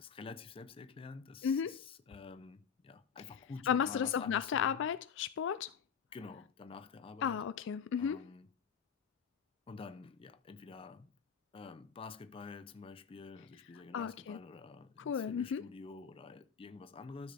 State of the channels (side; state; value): right; quieter; 7.2 dB